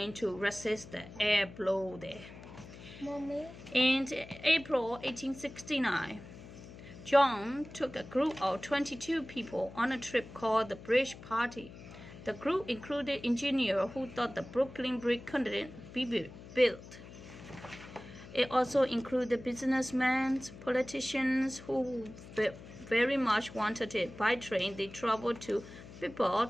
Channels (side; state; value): left; noise; hum, 16 dB below the sound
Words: to resist the air blow there. Mommy. In April 1869, John took a group of 22 people on a trip called the Bridge Party. The group included engineers who thought the Brooklyn Bridge couldn't be built. It also included businessmen, politicians who very much wanted it. By train, they traveled to